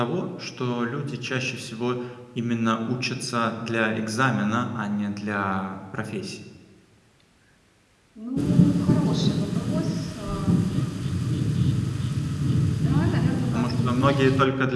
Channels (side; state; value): both; identical; correlation 1.00